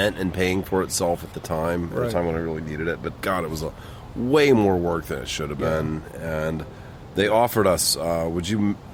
in paying for itself at the time. At a time when I really needed it. But God, it was way more work than it should have been. And they offered us, could you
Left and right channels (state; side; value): identical; both; correlation 1.00